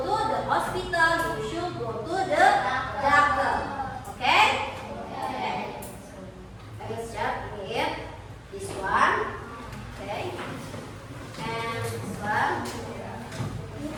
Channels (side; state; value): both; identical; correlation 1.00